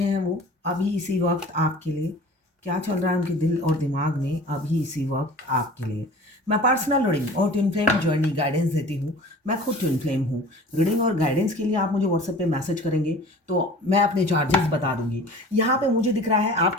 हैं वो अभी इसी वक्त आपके लिए। क्या चल रहा है उनके दिल और दिमाग में अभी इसी वक्त आपके लिए। मैं पर्सनल रीडिंग और ट्विन फ्लेम जर्नी गाइडेंस देती हूँ। मैं खुद ट्विन फ्लेम हूँ। रीडिंग और गाइडेंस के लिए आप मुझे व्हाट्सएप पे मैसेज करेंगे तो मैं अपने चार्जेस बता दूंगी। यहाँ पे मुझे दिख रहा है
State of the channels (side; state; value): both; normal; correlation 0.43